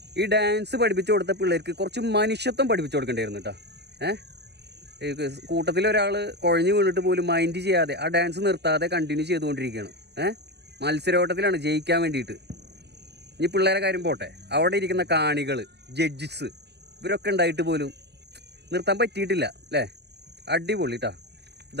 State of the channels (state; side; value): late; left; 0.49 ms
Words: ഈ ഡാൻസ് പഠിപ്പിച്ചു കൊടുത്ത പിള്ളേർക്ക് കുറച്ച് മനുഷ്യത്വം പഠിപ്പിച്ചു കൊടുക്കേണ്ടിയിരുന്നു കേട്ടോ. കൂട്ടത്തിൽ ഒരാൾ കുഴഞ്ഞു വീണിട്ട് പോലും മൈൻഡ് ചെയ്യാതെ ആ ഡാൻസ് നിർത്താതെ കണ്ടിന്യൂ ചെയ്തുകൊണ്ടിരിക്കുകയാണ്. മത്സരോട്ടത്തിലാണ് ജയിക്കാൻ വേണ്ടിയിട്ട്. ഇനി പിള്ളേരെ കാര്യം പോട്ടെ, അവിടെ ഇരിക്കുന്ന കാണികൾ, ജഡ്ജസ്, ഇവരൊക്കെ ഉണ്ടായിട്ട് പോലും നിർത്താൻ പറ്റിയിട്ടില്ല അല്ലേ? അടിപൊളി കേട്ടോ.